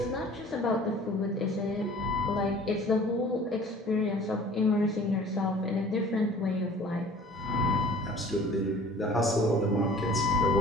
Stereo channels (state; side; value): normal; both; correlation 0.48